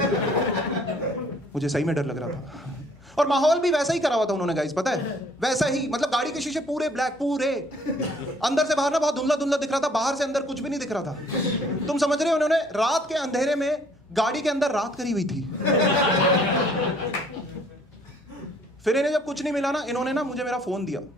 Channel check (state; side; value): normal; both; correlation 0.60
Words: मुझे सही में डर लग रहा था। और माहौल भी वैसा ही करा हुआ था उन्होंने गाइस, पता है, वैसा ही। मतलब गाड़ी के शीशे पूरे ब्लैक, पूरे अंदर से बाहर ना बहुत धुंधला धुंधला दिख रहा था, बाहर से अंदर कुछ भी नहीं दिख रहा था। तुम समझ रहे हो, उन्होंने रात के अंधेरे में गाड़ी के अंदर रात करी हुई थी। फिर इन्हें जब कुछ नहीं मिला ना, इन्होंने ना मुझे मेरा फोन दिया,